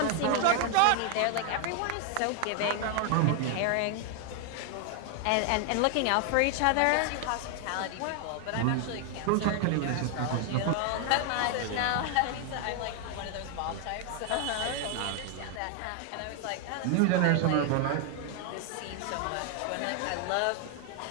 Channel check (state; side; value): different; both; correlation 0.00